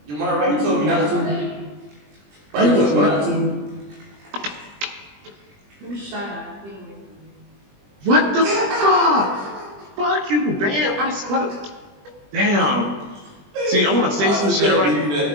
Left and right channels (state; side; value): late; left; 20 ms